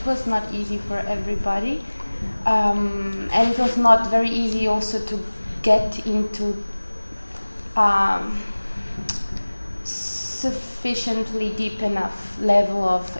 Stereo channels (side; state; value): both; inverted; correlation -1.00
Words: was not easy for everybody. And it was not very easy also to get into sufficiently deep enough level of